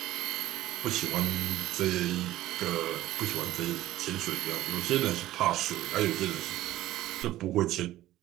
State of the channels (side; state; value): left; quieter; 15.0 dB